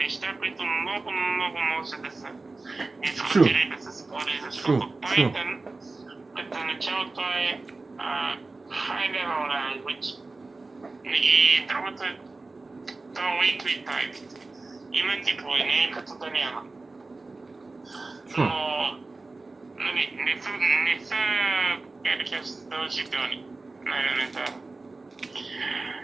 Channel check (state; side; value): quieter; left; 3.4 dB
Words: които много може да се дискутира и да се спори, защото Python като начало това е high level language и другото е то weakly typed. Има типове, не е като да няма. Но не са задължителни на елементарно.